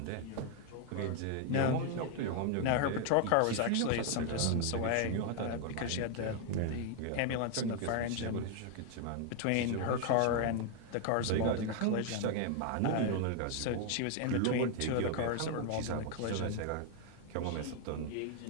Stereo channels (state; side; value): different; both; correlation 0.00